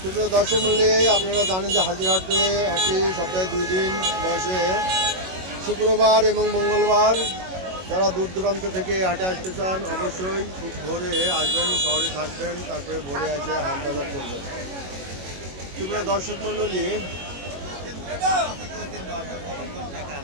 সুপ্রিয় দর্শক মূল্যে আপনারা জানেন যে হাজিরহাটে হাটে সপ্তাহে 2 দিন বসে, শুক্রবার এবং মঙ্গলবার। যারা দূর দূরান্ত থেকে হাটে আসতে চান অবশ্যই খুব ভোরে আসবেন, শহরে থাকবেন, তারপরে ভোরে এসে হাট বাজার করবেন। সুপ্রিয় দর্শক মণ্ডলী,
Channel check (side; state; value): left; late; 22 ms